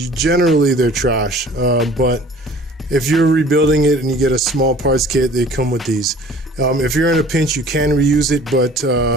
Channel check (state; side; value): normal; both; correlation 0.49